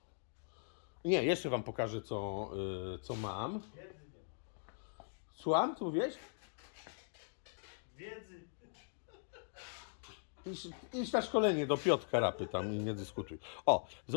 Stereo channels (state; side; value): silent; right; digital silence